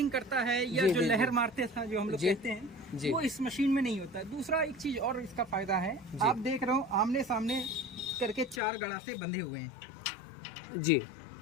करता है या जो लहर मारते था जो हम लोग कहते हैं, वो इस मशीन में नहीं होता। दूसरा एक चीज और इसका फायदा है, आप देख रहे हो आमने सामने करके 4 गड़ासे बंधे हुए हैं जी।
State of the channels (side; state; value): right; drops out; at 8.6 s